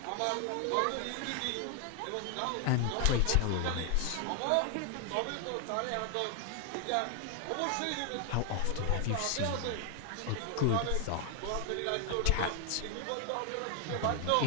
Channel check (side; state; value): both; different; correlation 0.00